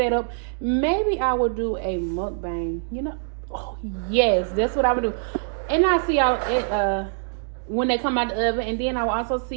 Maybe I will do a mukbang, you know. Oh yes, that's what I would do. And I'll see y'all at when they come out the oven, and then I will also see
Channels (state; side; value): silent; left; digital silence